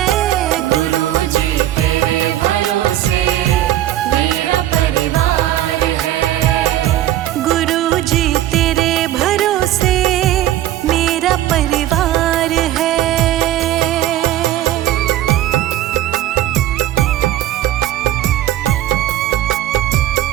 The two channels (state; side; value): quieter; left; 13.4 dB